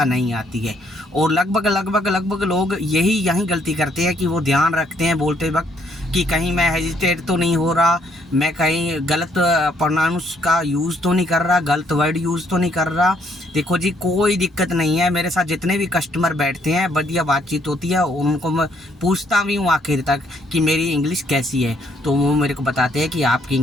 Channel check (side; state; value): both; normal; correlation 0.68